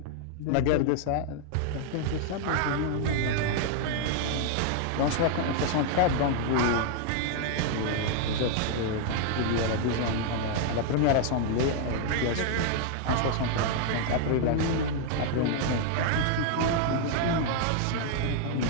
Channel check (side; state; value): both; different; correlation 0.00